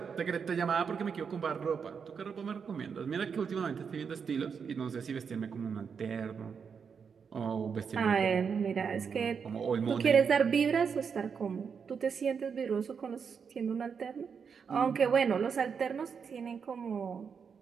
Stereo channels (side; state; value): left; quieter; 6.3 dB